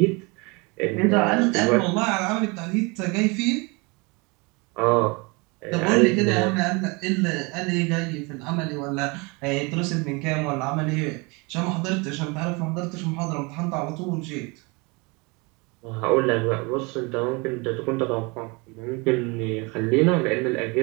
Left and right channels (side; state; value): left; quieter; 28.3 dB